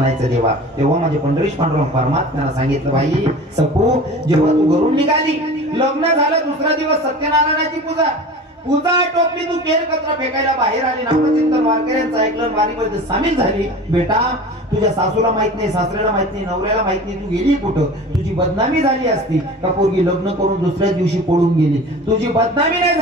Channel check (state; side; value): normal; both; correlation 0.38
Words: देवा? तेव्हा माझे पंढरीश पांडुरंग परमात्म्याला सांगितलं, बाई सखू, जेव्हा तू घरून निघाली, लग्न झालं, दुसरा दिवस सत्यनारायणाची पूजा टोपली, तू केर कचरा फेकायला बाहेर आली, नामचिंतन वारकऱ्यांचं ऐकलं, वारीमध्ये सामील झाली. बेटा तुझ्या सासूला माहित नाही, सासऱ्याला माहित नाही, नवऱ्याला माहित नाही, तू गेली कुठं? तुझी बदनामी झाली असती का पोरगी लग्न करून दुसऱ्या दिवशी पळून गेली? तुझी बदनामी नाही